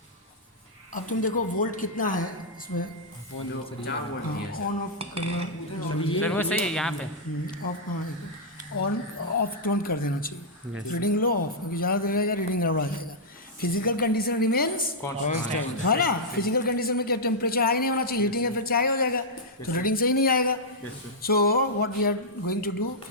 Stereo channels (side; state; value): both; normal; correlation -0.08